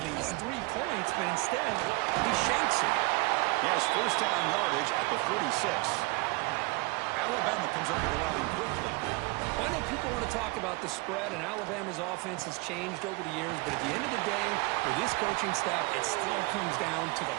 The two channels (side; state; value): left; quieter; 25.3 dB